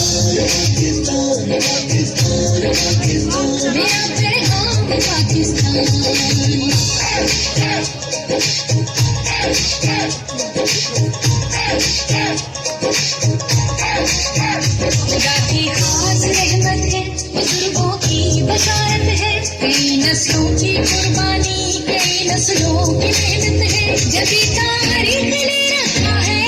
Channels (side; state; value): both; identical; correlation 1.00